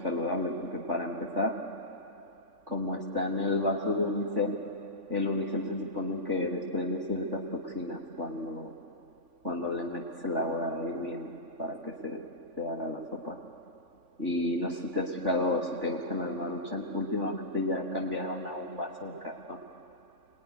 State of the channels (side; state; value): left; late; 3.5 ms